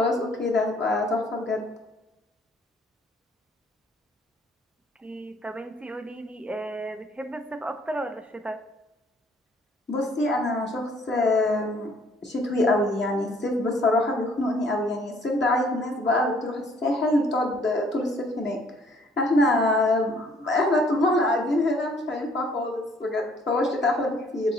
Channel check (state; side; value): normal; both; correlation 0.61